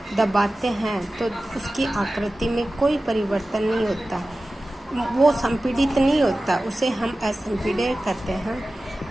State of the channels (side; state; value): both; normal; correlation 0.96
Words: दबाते हैं तो उसकी आकृति में कोई परिवर्तन नहीं होता, वो संपीड़ित नहीं होता, उसे हम असंपीड्य कहते हैं।